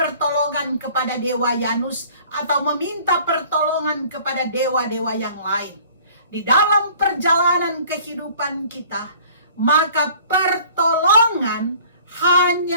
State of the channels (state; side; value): inverted; both; correlation -0.51